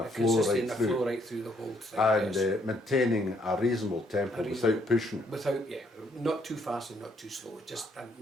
A flow consistency right and a through. flow right through the whole thing. And yes. maintaining a reasonable tempo without pushing. Without, not too fast and not too slow. Just in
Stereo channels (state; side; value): normal; both; correlation 0.70